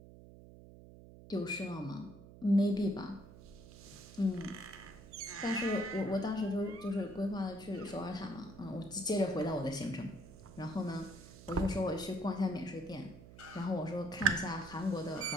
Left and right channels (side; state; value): right; noise; hum, 18 dB below the sound